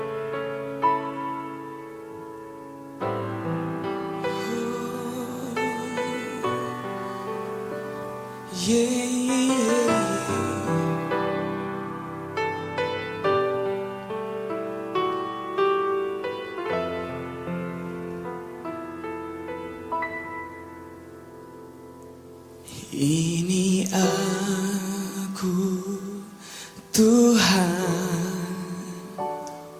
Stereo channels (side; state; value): both; identical; correlation 1.00